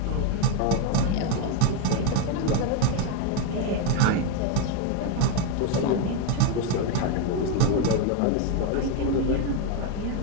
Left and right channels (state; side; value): different; both; correlation 0.02